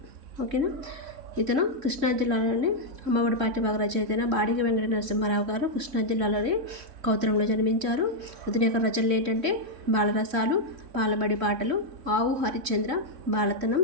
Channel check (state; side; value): late; left; 3.6 ms